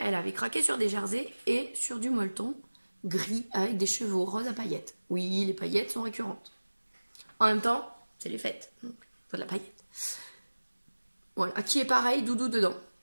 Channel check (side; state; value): both; inverted; correlation -1.00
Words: avait craqué sur des jerseys et sur du molleton gris avec des cheveux roses à paillettes. Oui, les paillettes sont récurrentes. En même temps, c'est les fêtes, donc il faut de la paillette. Voilà, qui est pareil, doudou dedans.